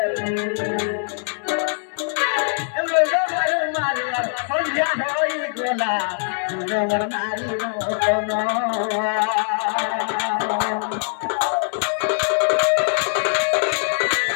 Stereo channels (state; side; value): silent; right; 64 dB below the other